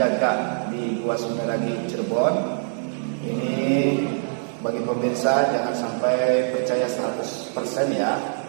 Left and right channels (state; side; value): silent; left; 63 dB below the other